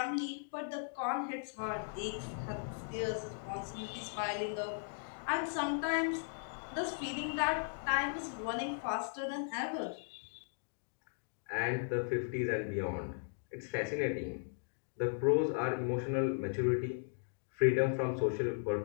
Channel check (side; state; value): right; silent; digital silence